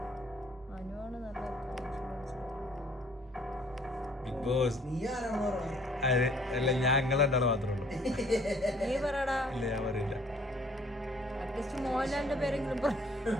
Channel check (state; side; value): normal; both; correlation 0.59